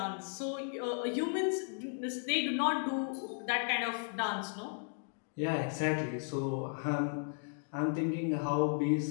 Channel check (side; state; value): right; silent; 54 dB below the other